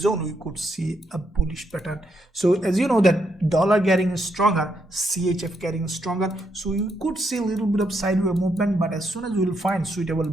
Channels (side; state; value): both; normal; correlation 0.78